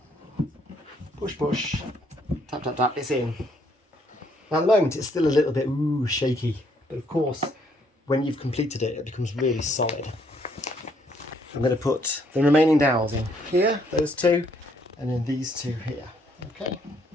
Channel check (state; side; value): normal; both; correlation 0.68